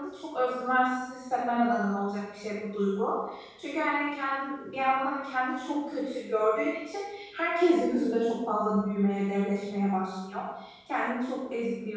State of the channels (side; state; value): both; identical; correlation 1.00